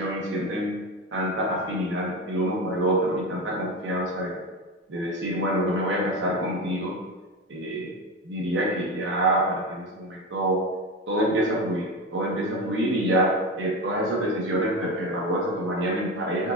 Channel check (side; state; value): both; normal; correlation 0.22